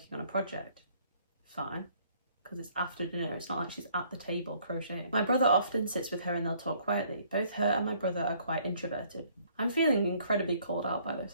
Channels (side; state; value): both; inverted; correlation -0.62